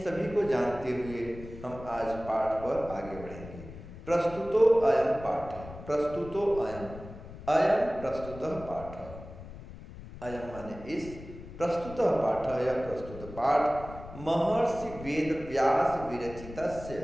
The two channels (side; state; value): left; noise; rumble, 14 dB below the sound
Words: सभी को जानते हुए हम आज पाठ पर आगे बढ़ेंगे। प्रस्तुतो अयं पाठ, प्रस्तुतो अयं, अयं प्रस्तुतः पाठ, अयं माने इस, प्रस्तुतः पाठ यह प्रस्तुत पाठ महर्षि वेदव्यास विरचितस्य,